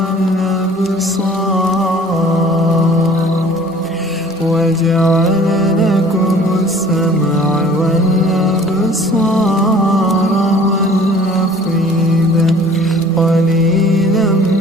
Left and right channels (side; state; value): both; normal; correlation 0.50